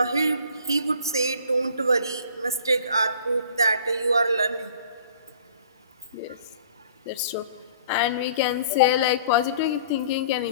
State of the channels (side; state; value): both; inverted; correlation -0.51